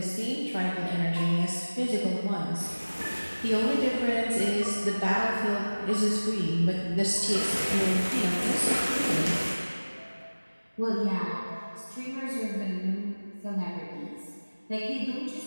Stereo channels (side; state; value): both; inverted; correlation -1.00